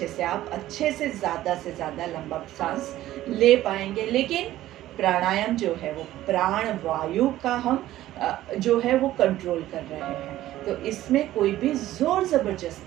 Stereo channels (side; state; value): left; quieter; 14.4 dB